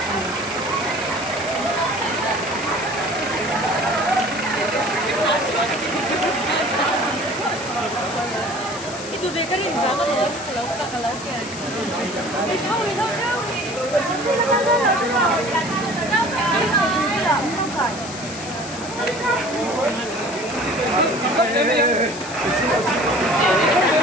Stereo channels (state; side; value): noise; left; hiss, 12 dB below the sound